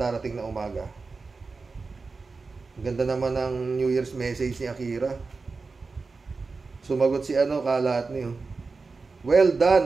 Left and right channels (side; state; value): left; quieter; 4.2 dB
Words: na umaga. Ganda naman ang New Year's message ni Akira. Sumagot si kalat niyo. Well